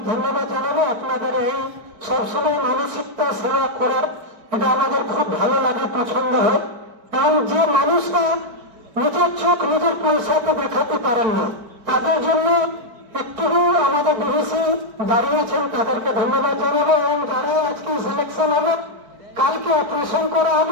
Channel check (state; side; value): late; left; 4.5 ms